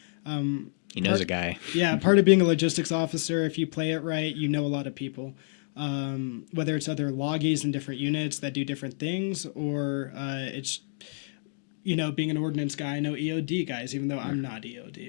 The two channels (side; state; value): right; silent; digital silence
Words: He knows a guy. Yeah, part of being a logistics officer, if you play it right, you know a lot of people. Whether it's other loggies in different units that do different things, or it's, being an ordnance guy, I know EOD guys, even though I'm not